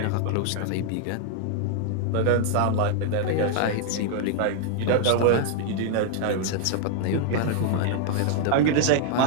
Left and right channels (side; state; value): both; different; correlation 0.00